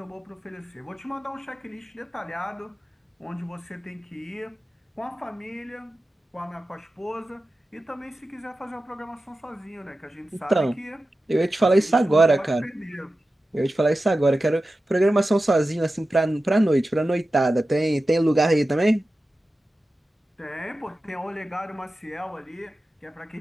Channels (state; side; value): normal; both; correlation 0.93